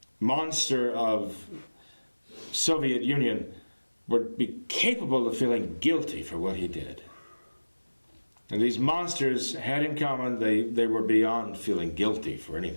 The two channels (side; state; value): both; inverted; correlation -1.00